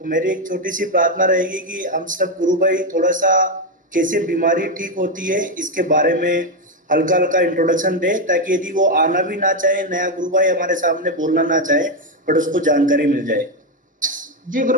मेरी एक छोटी सी प्रार्थना रहेगी कि हम सब गुरु भाई थोड़ा सा कैसे बीमारी ठीक होती है इसके बारे में हल्का हल्का इंट्रोडक्शन दे, ताकि यदि वो आना भी ना चाहे, नया गुरु भाई हमारे सामने बोलना ना चाहे, बट उसको जानकारी मिल जाए। जी गुरु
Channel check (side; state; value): both; normal; correlation 0.06